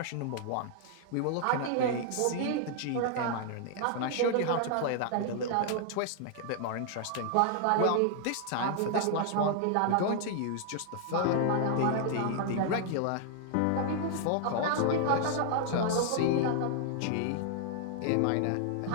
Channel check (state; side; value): different; both; correlation -0.01